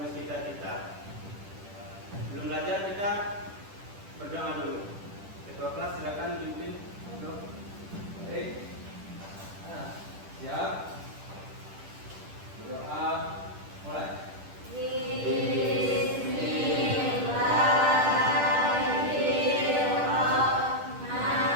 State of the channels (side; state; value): left; late; 10 ms